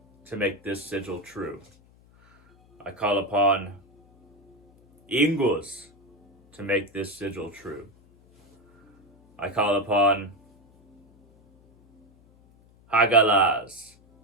to make this sigil true. I call upon Ingus to make this sigil true. I call upon Hagalaz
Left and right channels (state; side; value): noise; left; hum, 30 dB below the sound